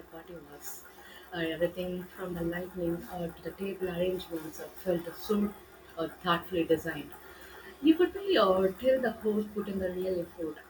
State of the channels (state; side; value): identical; both; correlation 1.00